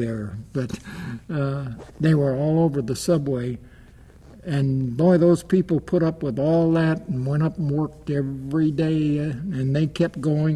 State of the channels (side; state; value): both; identical; correlation 1.00